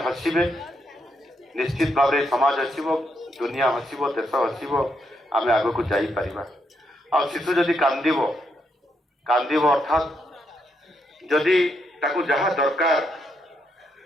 ହସିବେ, ନିଶ୍ଚିତ ଭାବରେ ସମାଜ ହସିବ, ଦୁନିଆ ହସିବ, ଦେଶ ହସିବ, ଆମେ ଆଗକୁ ଯାଇପାରିବା। ଆଉ ଶିଶୁ ଯଦି କାନ୍ଦିବ ଅର୍ଥାତ୍ ଯଦି ତାକୁ ଯାହା ଦରକାର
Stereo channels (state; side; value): normal; both; correlation 0.78